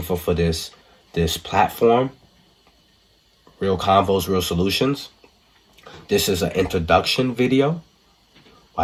for this platform, Real Convos, Real Solutions. This is an introduction video.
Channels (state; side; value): identical; both; correlation 1.00